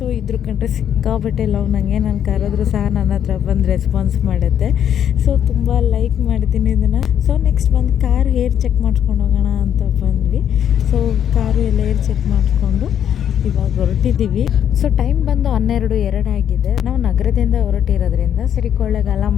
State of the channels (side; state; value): right; quieter; 9.5 dB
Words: ಇದ್ರ ಕಂಡ್ರೆ ಸಿಕ್ಕಾಬಟ್ಟೆ ಲವ್ ನನಗೆ. ನಾನು ಕರೆದ್ರೂ ಸಹ ನನ್ನ ಹತ್ರ ಬಂದು ರೆಸ್ಪಾನ್ಸ್ ಮಾಡುತ್ತೆ. ಸೊ ತುಂಬ ಲೈಕ್ ಮಾಡ್ತೀನಿ ಇದನ್ನು. ಸೊ ನೆಕ್ಸ್ಟ್ ಬಂದು ಕಾರ್ ಹೇರ್ ಚೆಕ್ ಮಾಡ್ಸ್ಕೊಂಡು ಹೋಗೋಣ ಅಂತ ಬಂದ್ವಿ. ಸೊ ಕಾರು ಎಲ್ಲ ಹೇರ್ ಚೆಕ್ ಮಾಡಿಕೊಂಡು ಇವಾಗ ಹೊರಟಿದ್ದೀವಿ. ಸೊ ಟೈಮ್ ಬಂದು 12:02 ಆಗಿದೆ. ನಾವು ನಗರದಿಂದ ಹೊರಟಿರೋದ್ರಿಂದ ಸರಿ ಕೊಳ್ಳೇಗಾಲ